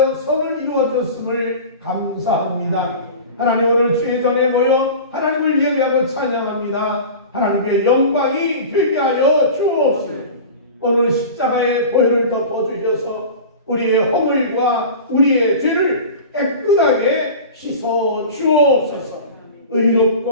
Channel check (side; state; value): both; inverted; correlation -0.35